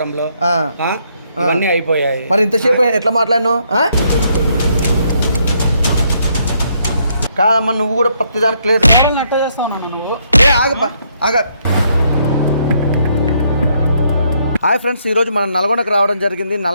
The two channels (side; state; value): both; inverted; correlation -0.72